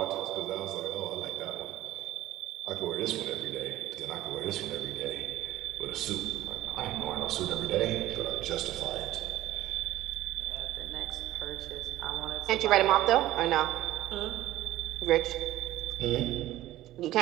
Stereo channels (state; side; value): quieter; left; 15.1 dB